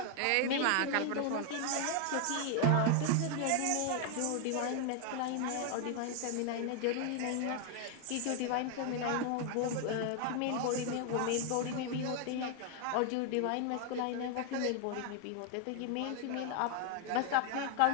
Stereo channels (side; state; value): both; different; correlation 0.00